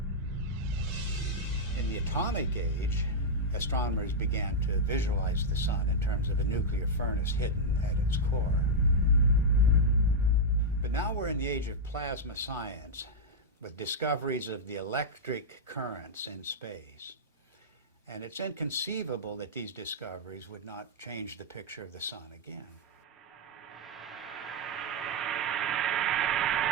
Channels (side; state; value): both; normal; correlation -0.04